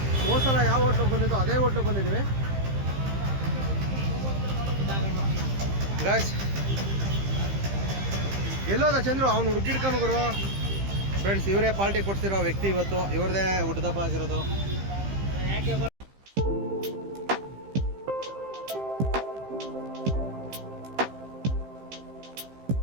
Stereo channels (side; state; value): left; late; 15 ms